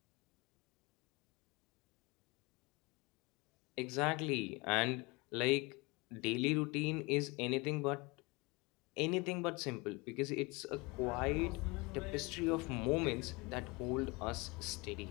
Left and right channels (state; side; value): quieter; right; 25.9 dB